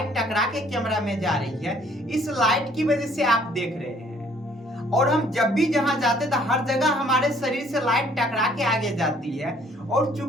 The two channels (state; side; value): normal; both; correlation 0.61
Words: टकरा के कैमरा में जा रही है, इस लाइट की वजह से आप देख रहे हैं। और हम जब भी जहां जाते तो हर जगह हमारे शरीर से लाइट टकरा के आगे जाती है, और